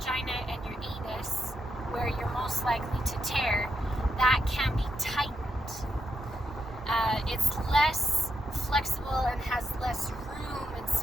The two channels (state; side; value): normal; both; correlation 0.83